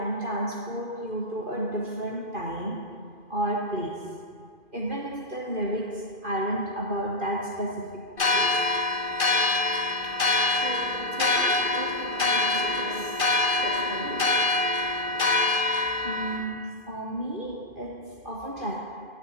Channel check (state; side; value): late; left; 2.5 ms